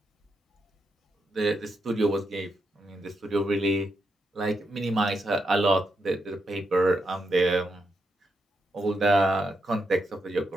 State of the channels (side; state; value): both; normal; correlation 0.83